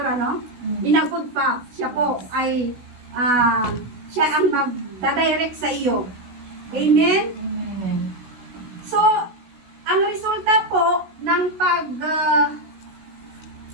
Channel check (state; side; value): late; left; 16 ms